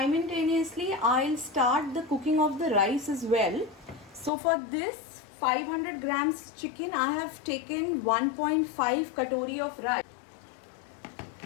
I'll start the cooking of the rice as well. So for this 500 grams chicken, I have taken 1.5 katori of rice.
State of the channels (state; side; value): drops out; right; at 4.3 s